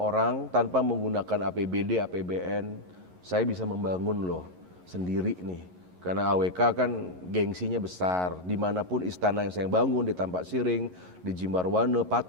tanpa menggunakan APBD, APBN, saya bisa membangun loh sendiri nih. Karena AWK kan gengsinya besar, dimanapun istana yang saya bangun, di Tampak Siring, di Jimbarwane,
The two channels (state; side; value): late; left; 11 ms